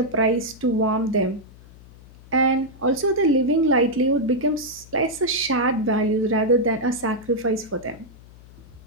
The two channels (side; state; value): left; noise; hum, 22 dB below the sound